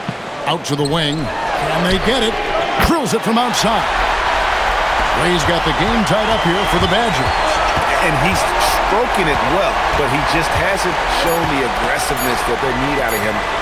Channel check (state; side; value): identical; both; correlation 1.00